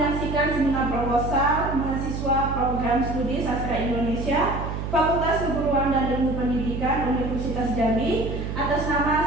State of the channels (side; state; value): right; noise; hum, 5 dB below the sound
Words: seminar proposal mahasiswa program studi sastra Indonesia Fakultas Keguruan dan Ilmu Pendidikan Universitas Jambi atas